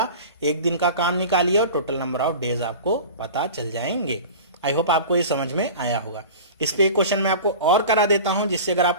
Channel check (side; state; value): both; inverted; correlation -0.36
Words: एक दिन का काम निकालिए और टोटल नंबर ऑफ डेज आपको पता चल जाएंगे। आई होप आपको ये समझ में आया होगा। इस पे एक क्वेश्चन मैं आपको और करा देता हूं, जिससे अगर